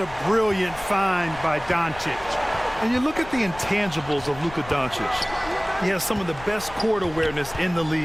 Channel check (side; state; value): left; noise; rumble, 17 dB below the sound